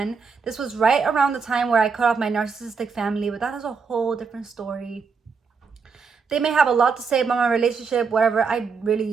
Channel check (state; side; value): quieter; left; 5.3 dB